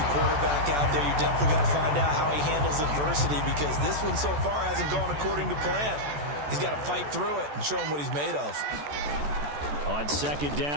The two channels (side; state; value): left; late; 14 ms